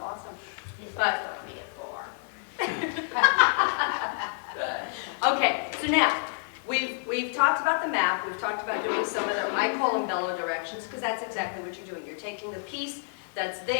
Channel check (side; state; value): right; silent; digital silence